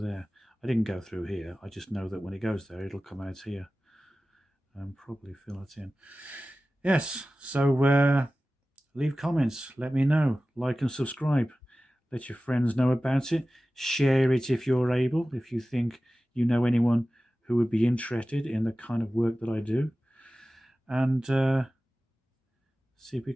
I didn't go through here. I just know that when it goes there, it'll come out here and probably fill it in. Yes. So leave comments. Let me know. Like and subscribe. Let your friends know about it. Share it if you're able. If you think you know anyone who would be interested in the kind of work that I do, and see if we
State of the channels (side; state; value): both; normal; correlation 0.96